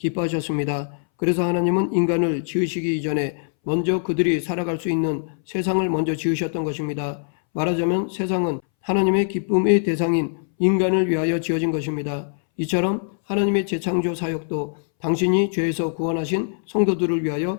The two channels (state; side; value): silent; right; 63 dB below the other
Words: 그래서 하나님은 인간을 지으시기 이전에 먼저 그들이 살아갈 수 있는 세상을 먼저 지으셨던 것입니다. 말하자면 세상은 하나님의 기쁨의 대상인 인간을 위하여 지어진 것입니다. 이처럼 하나님의 재창조 사역도 당신이 죄에서 구원하신 성도들을